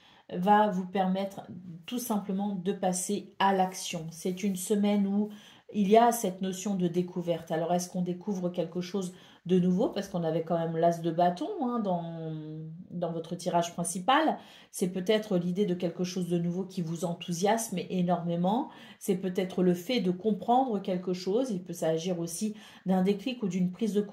va vous permettre tout simplement de passer à l'action. C'est une semaine où il y a cette notion de découverte. Alors, est-ce qu'on découvre quelque chose de nouveau? Parce qu'on avait quand même l'as de bâton hein, dans votre tirage principal. C'est peut-être l'idée de quelque chose de nouveau qui vous enthousiasme énormément. C'est peut-être le fait de comprendre quelque chose. Il peut s'agir aussi d'un déclic ou d'une prise de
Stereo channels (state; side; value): identical; both; correlation 1.00